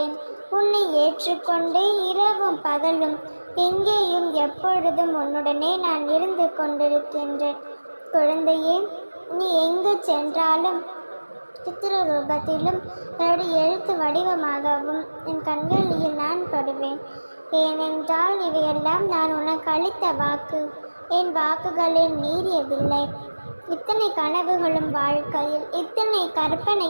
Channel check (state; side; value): inverted; both; correlation -1.00